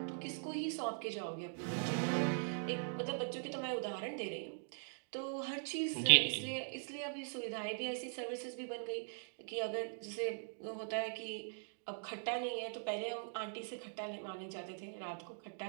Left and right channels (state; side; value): silent; left; digital silence